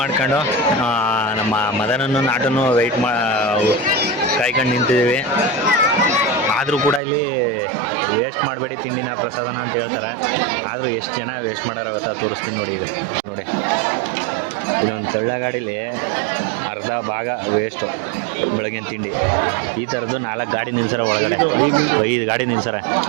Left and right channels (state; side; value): drops out; left; at 7.0 s